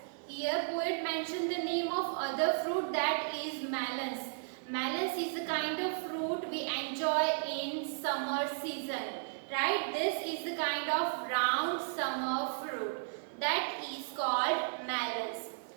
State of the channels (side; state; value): left; silent; 55 dB below the other